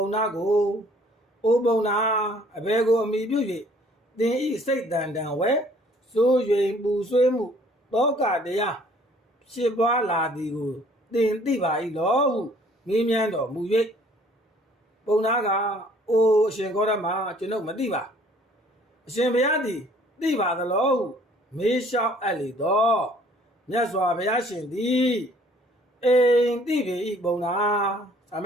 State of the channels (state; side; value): normal; both; correlation 0.57